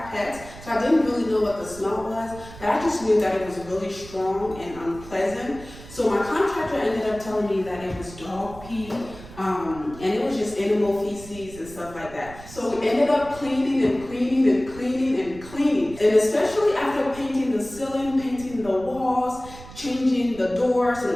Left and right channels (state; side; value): noise; right; rumble, 17 dB below the sound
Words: pets, so I didn't really know what the smell was, but I just knew that it was really strong and unpleasant. So my contractor ended up telling me that it was dog pee, and it was just animal feces and stuff like that. So we ended up cleaning and cleaning and cleaning and cleaning. And especially after painting the ceiling, painting the walls, changing the doors